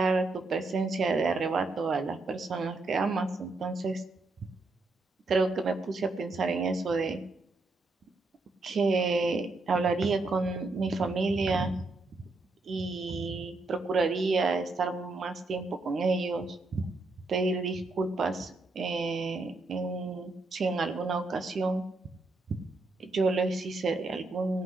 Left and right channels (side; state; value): left; quieter; 3.2 dB